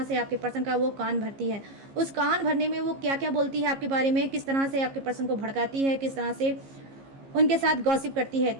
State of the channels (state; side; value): late; left; 15 ms